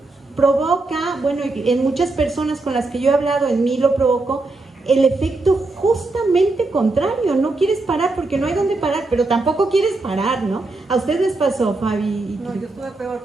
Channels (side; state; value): left; quieter; 3.2 dB